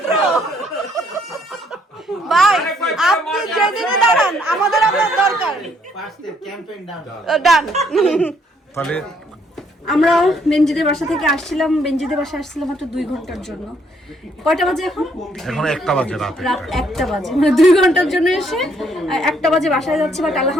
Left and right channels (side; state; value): both; normal; correlation 0.68